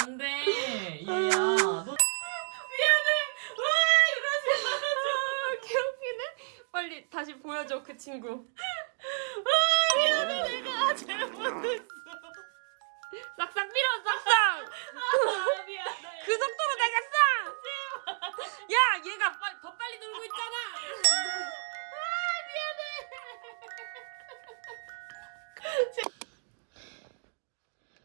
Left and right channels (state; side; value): silent; left; 57 dB below the other